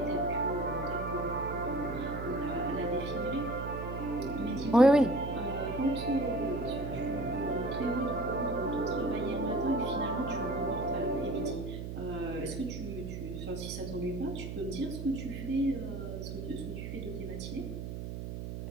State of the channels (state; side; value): noise; right; hum, 6 dB below the sound